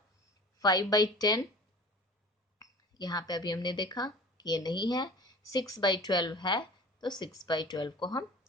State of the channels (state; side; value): normal; both; correlation 0.42